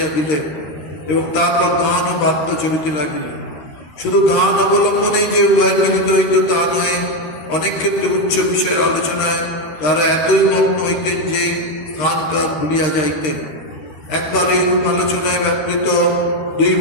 দিলেন এবং তারপর গান ও বাদ্য চলিতে লাগিলেন। শুধু গান অবলম্বনেই যে উভয় মিলিত হইত তা নয়, অনেক ক্ষেত্রে উচ্চ বিষয়ের আলোচনায় তারা এতই মগ্ন হইতেন যে স্থান কাল ভুলিয়া যাইতেন। একবার এইরূপ আলোচনায় ব্যাপৃত দুই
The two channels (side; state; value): right; late; 13 ms